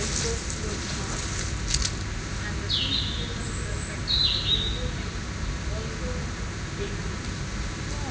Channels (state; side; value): identical; both; correlation 1.00